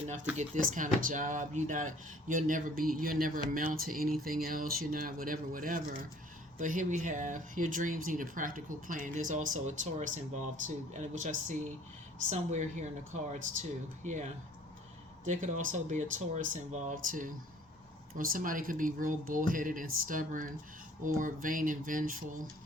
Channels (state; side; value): normal; both; correlation 0.54